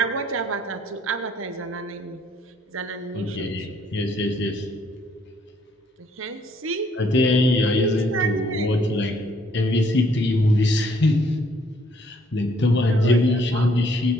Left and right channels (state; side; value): normal; both; correlation 0.65